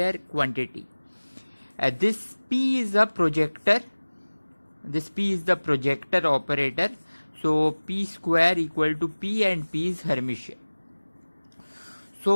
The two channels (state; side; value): inverted; both; correlation -1.00